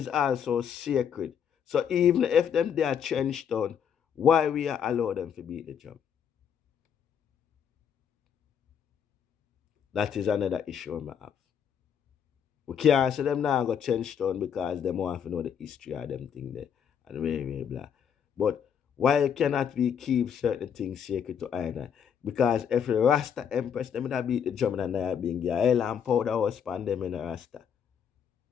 also sacred. So even if them they are trenched down, why we are allow them to beat the drum? That is another issue I have. We can't say them now go trench down because them want to know the history of them thing there and very blah. But why cannot we keep certain things sacred to either? Because if the Rasta Empress, them would beat the drum and they being a hell and powder was span them in the Rasta.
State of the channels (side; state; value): right; quieter; 7.9 dB